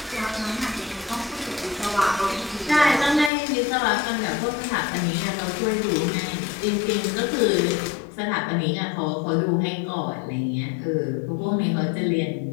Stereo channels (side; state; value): right; drops out; at 3.3 s